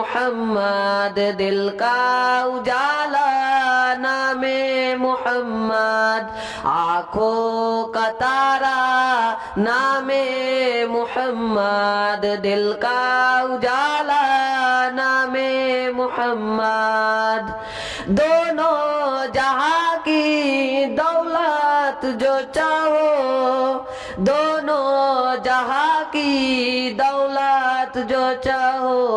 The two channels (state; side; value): identical; both; correlation 1.00